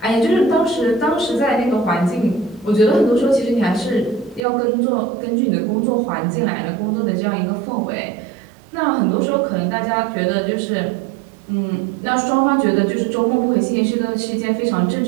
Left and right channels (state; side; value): drops out; left; at 4.5 s